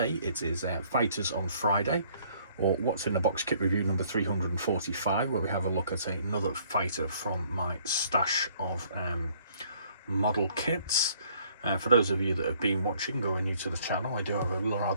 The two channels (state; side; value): inverted; both; correlation -0.61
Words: it is Fighters on Friday, or What's in the Box kit review number 345, where we have a look at another fighter from my stash of model kits. For those of you that have been watching or are new to the channel, I do have a